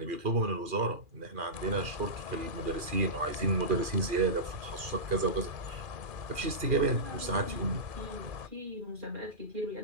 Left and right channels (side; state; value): left; late; 2.4 ms